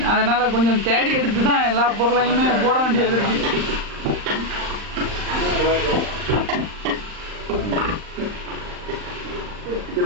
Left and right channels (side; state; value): left; late; 39 ms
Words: அதனால கொஞ்சம் தேடி எடுத்து தான் எல்லா பொருளையுமே போட வேண்டியது இருக்கு.